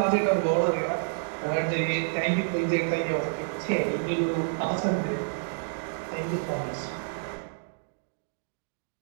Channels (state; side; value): silent; left; digital silence